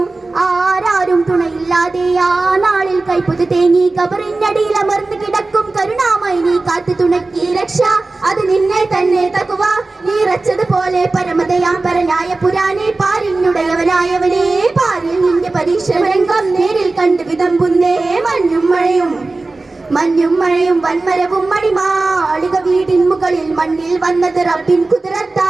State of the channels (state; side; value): quieter; left; 3.4 dB